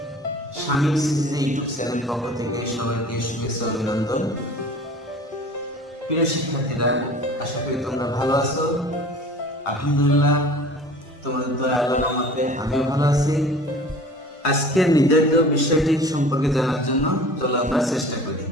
শামীম সিরিজে YouTube channel পক্ষ থেকে সবাইকে শুভেচ্ছা অভিনন্দন। প্রিয় শিক্ষার্থীরা, আশা করি তোমরা ভালো আছো। আলহামদুলিল্লাহ, তোমাদের দয়া আল্লাহর রহমতে আমিও ভালো আছি। আজকের নির্ধারিত বিষয়টি সম্পর্কে জানার জন্য চলো আমরা চেষ্টা করি।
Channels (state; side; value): normal; both; correlation 0.43